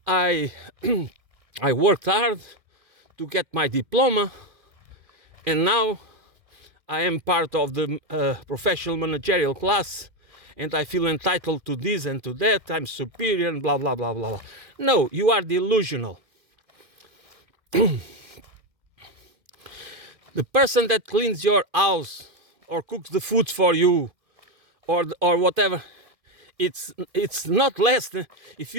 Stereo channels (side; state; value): left; late; 2.5 ms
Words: I worked hard to get my diploma, and now I am part of the professional managerial class, and I feel entitled to this and to that. I'm superior and blah, blah, blah, blah, blah. No, you are delusional. The person that cleans your house or cooks the food for you or whatever, it's not less than, if